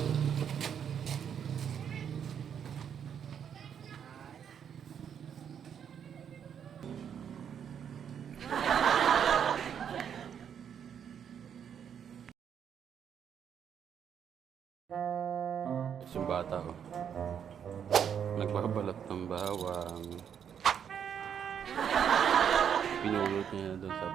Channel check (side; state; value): left; quieter; 8.2 dB